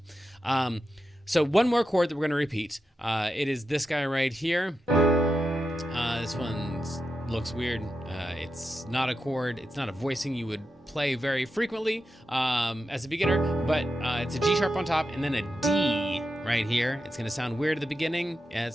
So one more chord that we're going to repeat. It is this guy right here. This one looks weird. It's not a chord. It's not a voicing you would play very frequently as a beginner, but it's a G sharp on top and then a D right here. It's gonna sound weird at the beginning, and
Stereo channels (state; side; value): normal; both; correlation 0.88